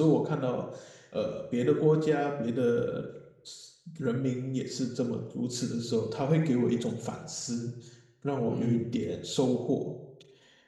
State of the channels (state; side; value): identical; both; correlation 1.00